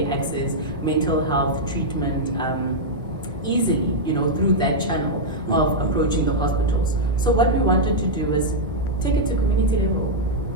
access mental health treatment easily, through that channel of approaching the hospitals. So what we wanted to do is take it to community level,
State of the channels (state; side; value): normal; both; correlation -0.05